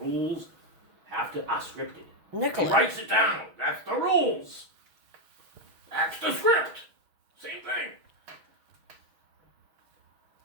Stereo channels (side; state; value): left; late; 6.3 ms